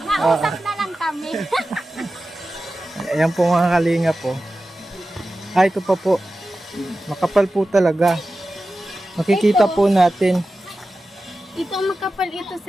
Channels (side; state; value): both; normal; correlation 0.94